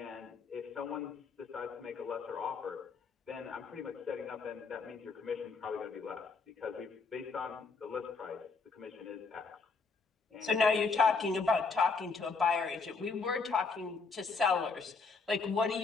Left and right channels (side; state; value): right; quieter; 4.5 dB